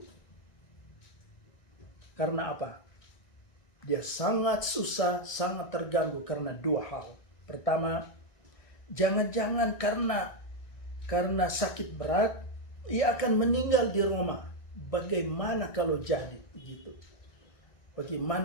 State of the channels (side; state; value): right; late; 1.9 ms